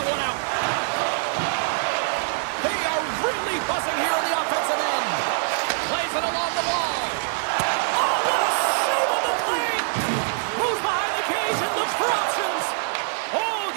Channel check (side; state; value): left; silent; digital silence